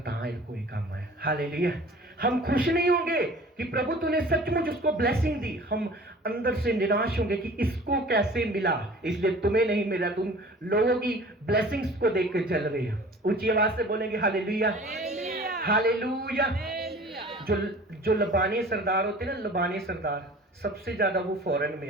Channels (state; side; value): normal; both; correlation 0.45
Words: कोई काम है। हालेलुया। हम खुश नहीं होंगे कि प्रभु तूने सचमुच उसको ब्लेसिंग दी, हम अंदर से निराश होंगे कि इसको कैसे मिला, इसलिए तुम्हें नहीं मिला। तुम लोगों की ब्लेसिंग्स को देख कर चल रहे हो। ऊंची आवाज से बोलेंगे हालेलुया, हालेलुया। जो लबानी सरदार होते हैं ना, लबानी सरदार, सबसे ज्यादा वो फॉरेन में